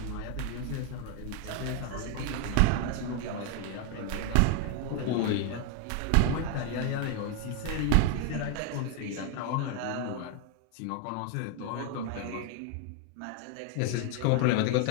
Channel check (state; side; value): different; both; correlation 0.01